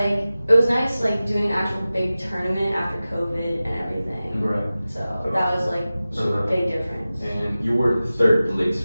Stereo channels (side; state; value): both; inverted; correlation -0.96